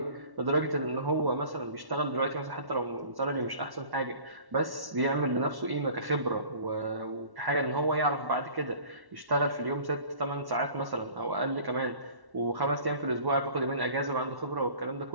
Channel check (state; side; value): late; left; 1.1 ms